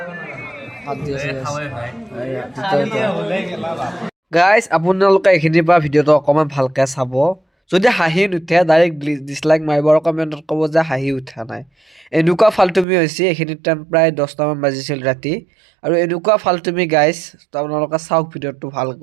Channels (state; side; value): drops out; left; at 12.9 s